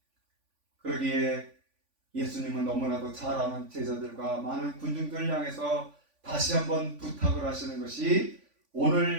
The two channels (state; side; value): late; left; 3.5 ms